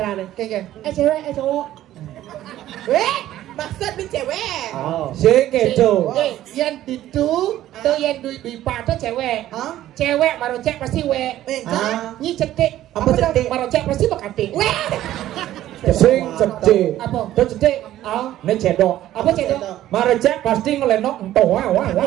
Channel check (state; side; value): quieter; left; 13.5 dB